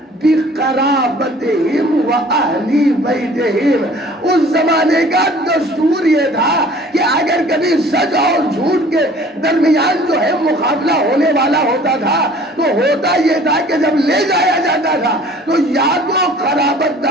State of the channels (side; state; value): both; normal; correlation 0.50